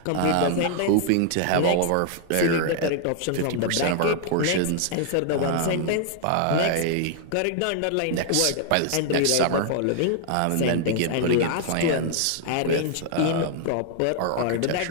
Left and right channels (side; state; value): both; different; correlation -0.01